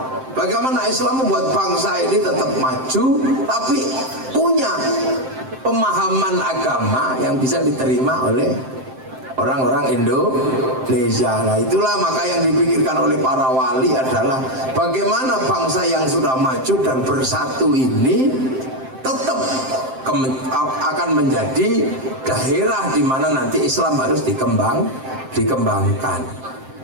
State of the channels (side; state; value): left; late; 7.7 ms